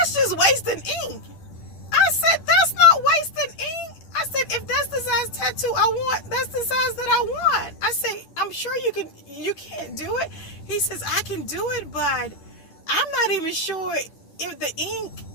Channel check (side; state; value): right; late; 10 ms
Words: just wasting ink. I said, that's not wasting ink. I said, if that's the size tattoo I want, that's the size that I want. I said, I'm sure you can't do it. He says, I can do it, but I'm not even sure if the ink